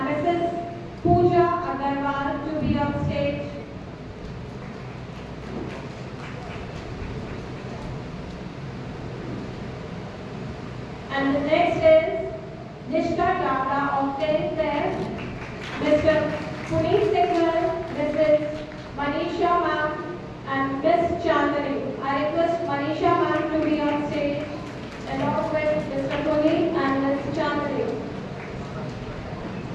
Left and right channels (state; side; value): identical; both; correlation 1.00